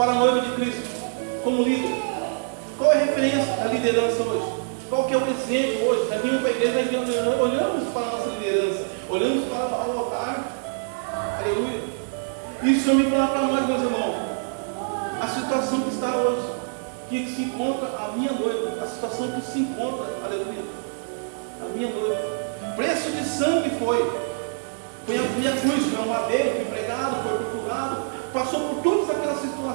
a noiva de Cristo, como líder? Qual é a referência da liderança hoje? Qual que é o exemplo hoje? Nós vimos para a igreja, nós olhamos para a nossa liderança, olhamos para o altar, aleluia. Isso eu me falar para nós, meus irmãos, a situação que está hoje, que se encontra a minha noiva, a situação que se encontra, aleluia, a minha noiva, preço de sangue foi a cruz, foi um madeiro, foi pregado, foi torturado, passou por todas aquelas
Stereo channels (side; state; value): left; silent; 62 dB below the other